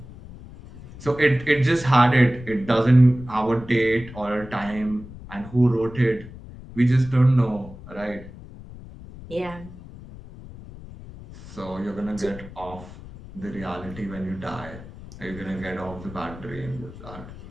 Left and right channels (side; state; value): left; noise; rumble, 16 dB below the sound